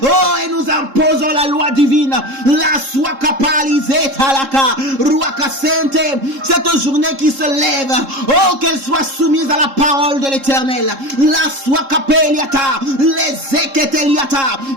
oh, et nous imposons la loi divine, la swakapalizeta laka, ruakasente, cette journée qui se lève, oh, qu'elle soit soumise à la parole de l'Éternel, la swakapeliata, les eketeliata.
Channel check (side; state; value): left; late; 3.7 ms